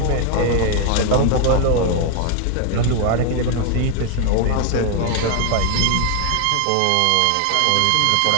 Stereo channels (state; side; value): different; both; correlation 0.01